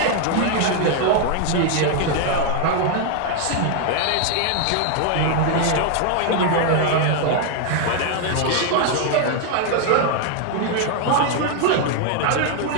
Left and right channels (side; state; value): both; different; correlation 0.00